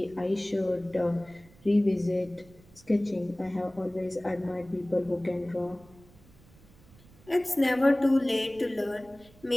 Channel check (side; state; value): right; noise; rumble, 25 dB below the sound